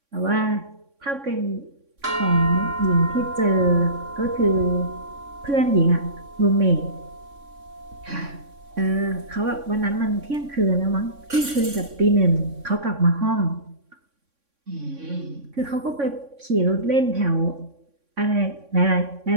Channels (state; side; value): late; left; 3.6 ms